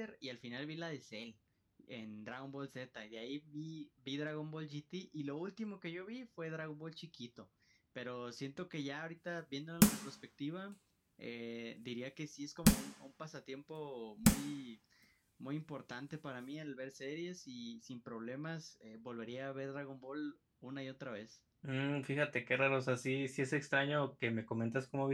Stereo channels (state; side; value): identical; both; correlation 1.00